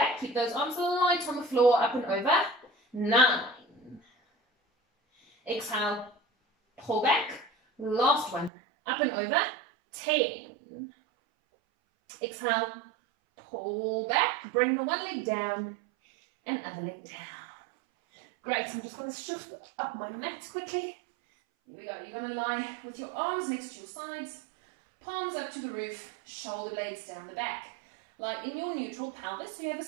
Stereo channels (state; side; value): drops out; left; at 8.5 s